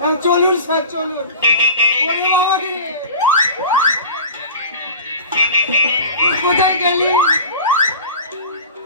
চলুন স্যার চলুন ওরে বাবা রে তুই কোথায় গেলি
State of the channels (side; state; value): both; inverted; correlation -0.37